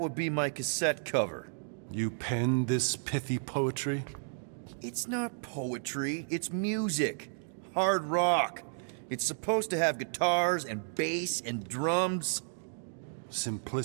be my cassette cover. You penned this pithy poetry? It's not poetry, it's music. Hard rock. It's supposed to have guitars and bass and drums.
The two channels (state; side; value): silent; left; digital silence